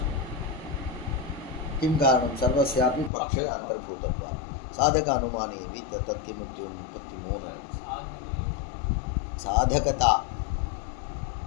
किं कारणं सर्वस्यापि पक्षे अन्तर्भूतत्वात् साधक अनुमाने अपि तत् किमुक्तिमूलं साधकता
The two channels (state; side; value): drops out; right; at 3.1 s